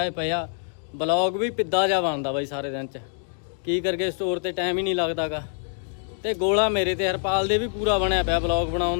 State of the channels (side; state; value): right; silent; digital silence